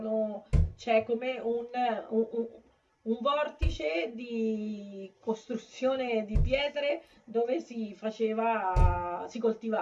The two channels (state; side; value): identical; both; correlation 1.00